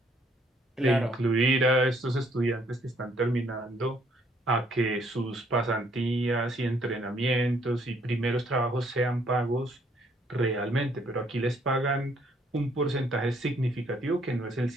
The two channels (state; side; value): normal; both; correlation 0.66